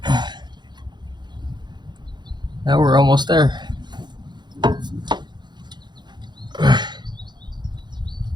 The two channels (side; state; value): left; late; 0.21 ms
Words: Now we're almost there.